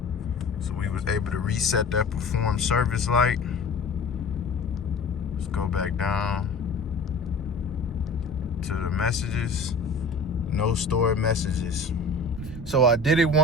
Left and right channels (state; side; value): quieter; right; 3.4 dB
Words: So we was able to reset that perform service light. Let's go back down to the messages. No stored messages. So I did it